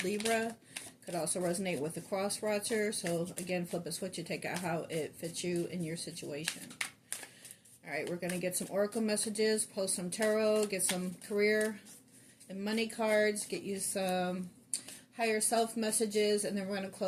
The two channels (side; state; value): both; identical; correlation 1.00